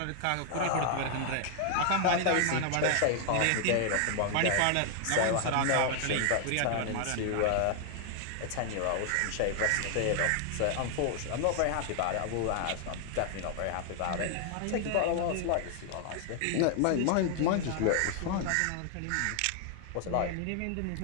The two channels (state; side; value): different; both; correlation 0.00